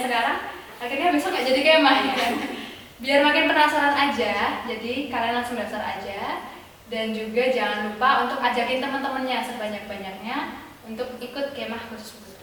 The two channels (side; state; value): both; identical; correlation 1.00